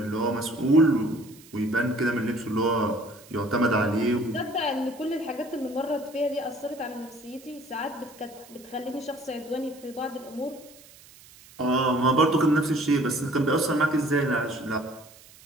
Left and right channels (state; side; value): noise; right; hiss, 23 dB below the sound